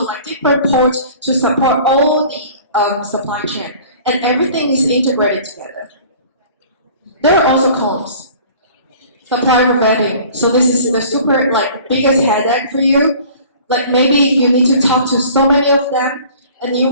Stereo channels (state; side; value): inverted; both; correlation -0.47